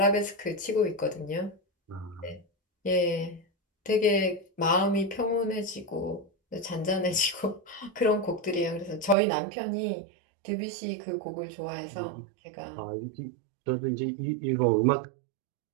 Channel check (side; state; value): left; drops out; at 9.2 s